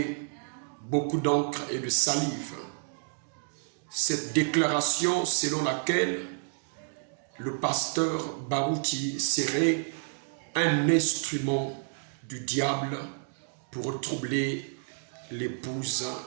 beaucoup d'encre et de salive. Cette déclaration selon laquelle le pasteur Barouti serait un instrument du diable pour troubler l'épouse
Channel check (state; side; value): silent; left; digital silence